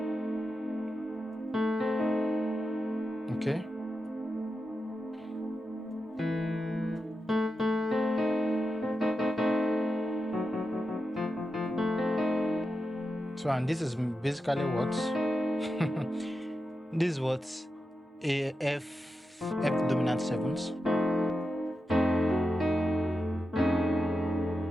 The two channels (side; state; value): both; normal; correlation 0.89